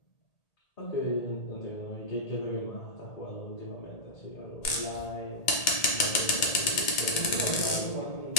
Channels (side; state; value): right; late; 1.8 ms